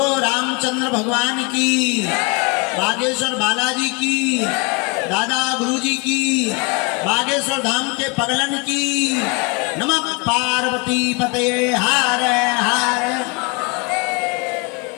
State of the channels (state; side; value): quieter; right; 30.2 dB